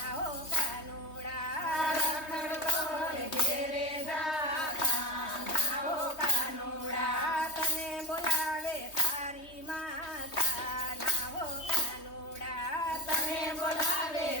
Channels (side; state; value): right; late; 3.2 ms